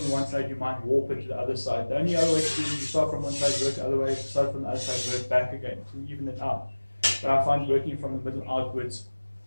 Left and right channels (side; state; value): both; inverted; correlation -1.00